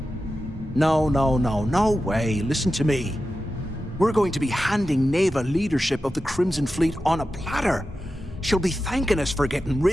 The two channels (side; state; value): both; normal; correlation 0.92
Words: No way. Listen to me. We're going to be handing Neva leadership of the Crimson Fleet on a platter. She'll be thanking us for getting